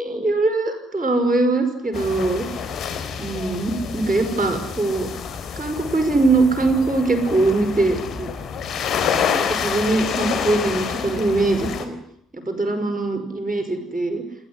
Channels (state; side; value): normal; both; correlation 0.71